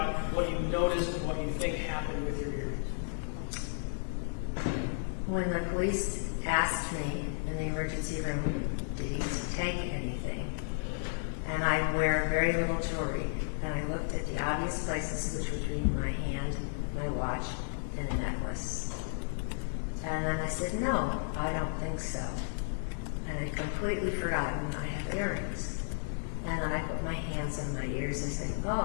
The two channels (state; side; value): silent; right; 56 dB below the other